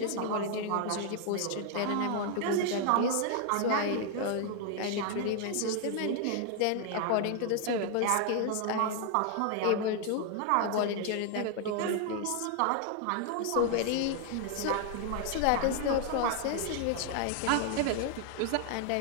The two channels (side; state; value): both; different; correlation 0.00